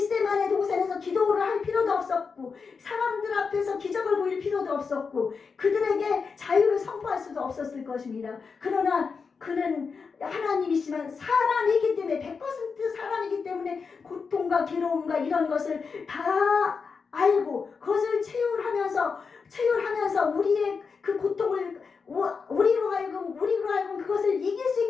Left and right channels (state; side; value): quieter; right; 5.3 dB